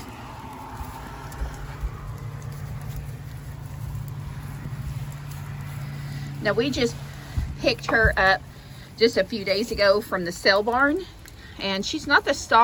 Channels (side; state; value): both; identical; correlation 1.00